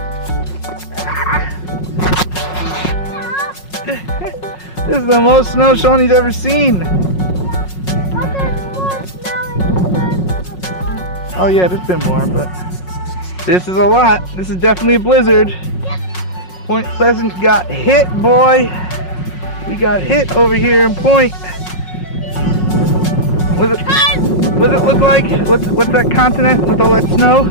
This is the most snow Seanny's ever seen. But there's more snow in the before. Oh yeah, there's been more, but this is a lot. This is definitely a blizzard. Point Pleasant got hit, boy. We got hit over here in Point. What does it look like? What's that continent with all that snow?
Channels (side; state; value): right; late; 5.5 ms